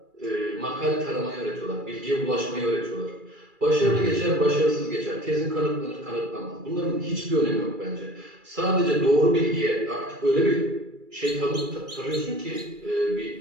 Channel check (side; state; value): left; late; 2.4 ms